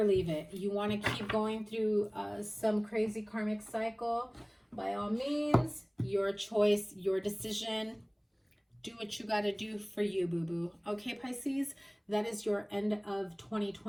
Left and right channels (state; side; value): identical; both; correlation 1.00